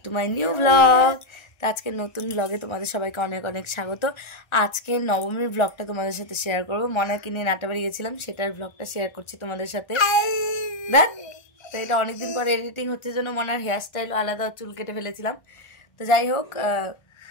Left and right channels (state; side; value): late; right; 1.3 ms